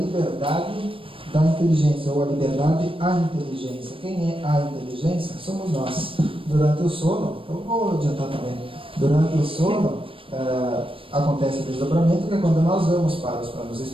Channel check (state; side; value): late; left; 0.26 ms